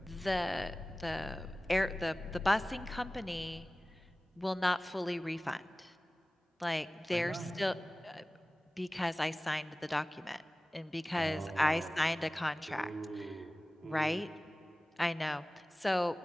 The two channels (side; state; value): both; normal; correlation 0.98